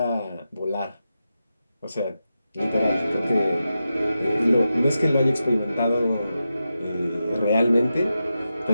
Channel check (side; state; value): both; inverted; correlation -0.90